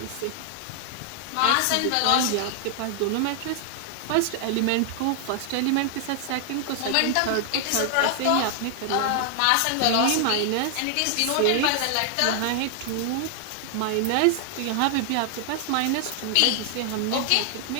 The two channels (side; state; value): both; different; correlation 0.00